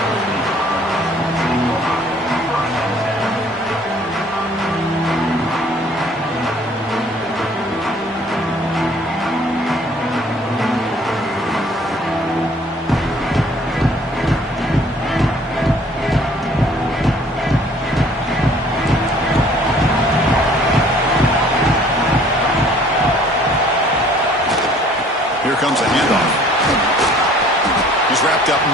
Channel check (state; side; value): normal; both; correlation 0.56